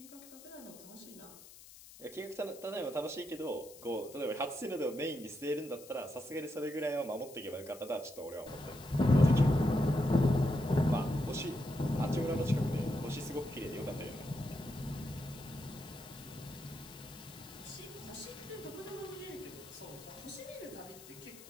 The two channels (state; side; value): noise; left; hiss, 18 dB below the sound